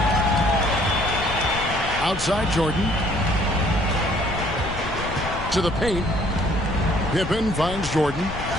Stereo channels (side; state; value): left; noise; rumble, 9 dB below the sound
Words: Outside Jordan. To the paint. Pippen finds Jordan.